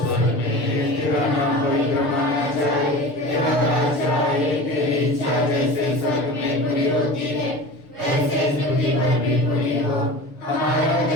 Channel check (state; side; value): late; right; 6.8 ms